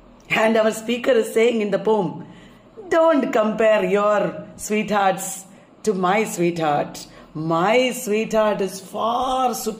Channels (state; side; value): identical; both; correlation 1.00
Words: And our speaker is saying in the poem, don't compare your sweethearts to my sweetheart. My sweetheart is far